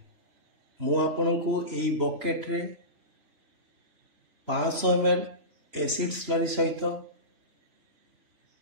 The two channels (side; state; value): left; late; 3.0 ms